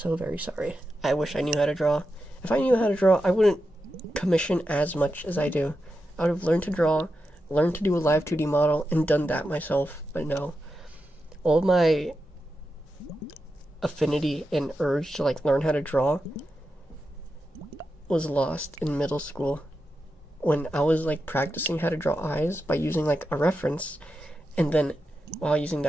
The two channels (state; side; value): normal; both; correlation 0.89